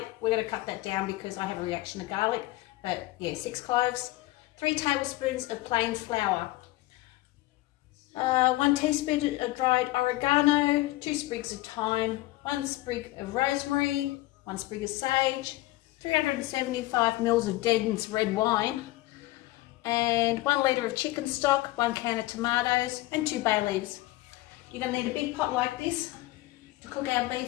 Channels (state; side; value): quieter; right; 18.3 dB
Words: We're going to cut that down because I have a reaction to garlic. But yeah, 6 cloves. 3 tablespoons of plain flour. 1 teaspoon of dried oregano. 2 sprigs of thyme. 1 sprig of rosemary. 1 sprig of sage. 375 ml of Den's red wine. And 1 litre of chicken stock. 1 can of tomatoes. And 2 bay leaves. You're going to need a big pot like this to cook our